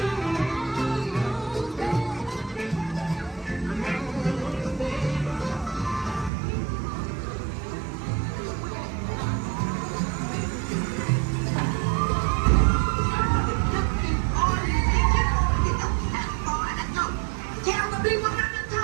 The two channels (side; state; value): left; drops out; at 6.3 s